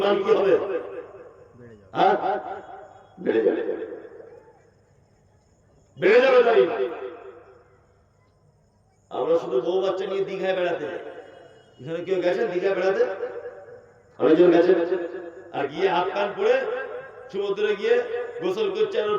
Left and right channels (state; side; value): identical; both; correlation 1.00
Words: কি হবে? হ্যাঁ, বেড়ে যাবে, বেড়ে যাবে তার ঈমান। আমরা শুধু বউ বাচ্চা নিয়ে দীঘায় বেড়াতে যাই। এখানে কেউ গেছেন দীঘায় বেড়াতে? অনেকজন গেছে। আর গিয়ে হাত কান পরে সমুদ্রে গিয়ে গোসল করছে, আর